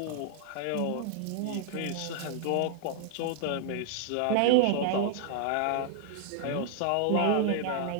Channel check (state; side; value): different; both; correlation 0.00